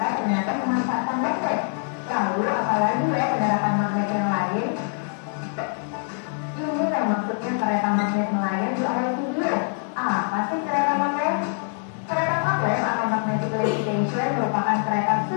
ternyata memanfaatkan magnet. Lalu, apalagi ya penerapan magnet yang lain? Ini yang maksudnya kereta magnet melayang di awal video. Apa sih kereta magnet? Kereta magnet atau magnetic levitation merupakan kereta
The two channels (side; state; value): right; silent; 57 dB below the other